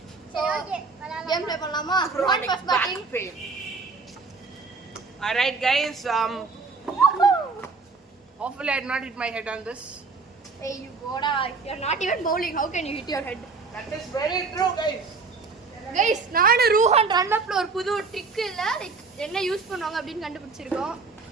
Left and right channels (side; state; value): left; quieter; 4.4 dB